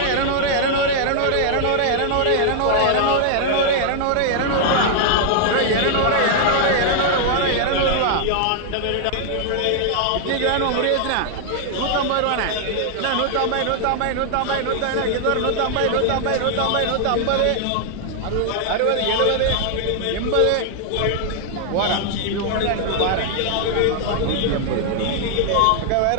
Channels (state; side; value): different; both; correlation 0.00